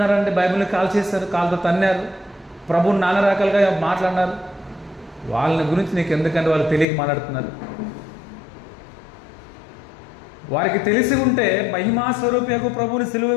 బైబిల్ని కాల్ చేశారు, కాలుతో తన్నారు, ప్రభువుని నానా రకాలుగా మాట్లాడినారు. వాళ్ళని గురించి నీకు ఎందుకంటే వాళ్ళు తెలియక మాట్లాడుతున్నారు. వారికి తెలిసి ఉంటే మహిమా స్వరూపకు ప్రభువుని సిలువ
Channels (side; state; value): right; drops out; at 6.9 s